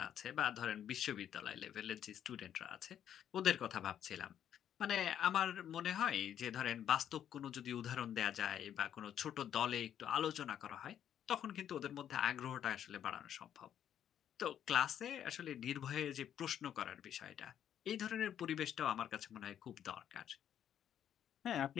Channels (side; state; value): right; quieter; 9.8 dB